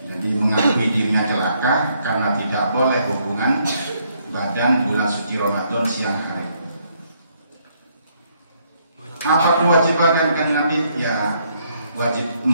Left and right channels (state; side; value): inverted; both; correlation -0.71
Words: Jadi mengakui dirinya celaka karena tidak boleh hubungan badan bulan suci Ramadan siang hari. Apa kewajiban Kanjeng Nabi? Ya wajib